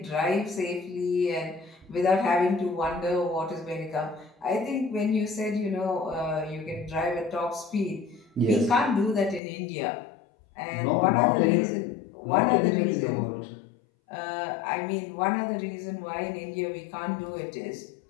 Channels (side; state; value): right; drops out; at 9.4 s